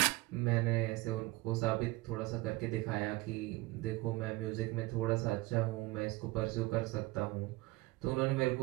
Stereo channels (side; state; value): left; quieter; 21.4 dB